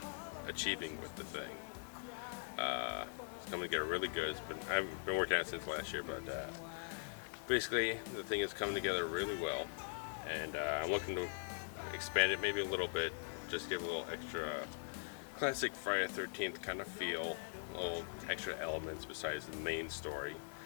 achieving with the thing. It's coming together really good. I've been working on it since last year, but basically the thing is coming together really well, and I'm looking to expand it maybe a little bit, just give a little extra classic Friday the 13th kind of feel, little extra elements besides the main story.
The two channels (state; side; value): silent; right; digital silence